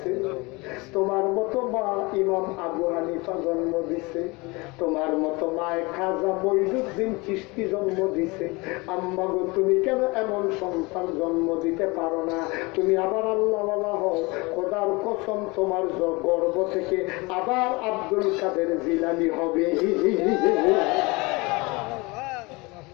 তোমার মতো মা ইমাম আবু হানিফা জন্ম দিছে, তোমার মতো মায়ে খাজা মঈনুদ্দিন চিশতি জন্ম দিছে। আম্মা গো তুমি কেন এমন সন্তান জন্ম দিতে পারো না? তুমি আবার আল্লাহওয়ালা হও, খোদার কসম তোমার গর্ভ থেকে আবার আব্দুল কাদের জিলানী হবে।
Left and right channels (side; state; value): right; quieter; 25.4 dB